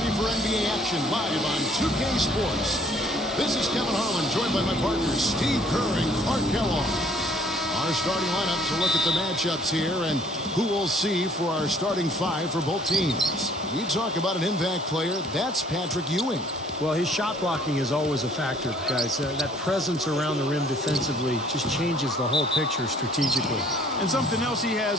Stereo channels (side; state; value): both; normal; correlation 0.59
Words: for NBA action live on 2K Sports. This is Kevin Harlan, joined by my partners Steve Kerr and Clark Kellogg. Our starting lineups will look at the matchups here and who we'll see for our starting five for both teams. We talk about an impact player. That's Patrick Ewing. Well, his shot blocking is always a factor, guys. That presence around the rim defensively just changes the whole picture strategically. And something else he